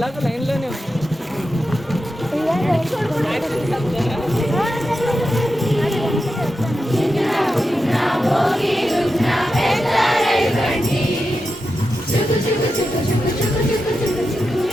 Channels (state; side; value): normal; both; correlation 0.89